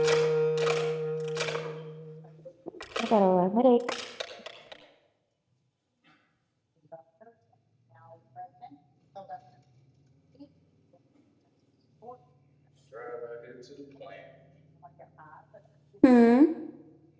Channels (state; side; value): identical; both; correlation 1.00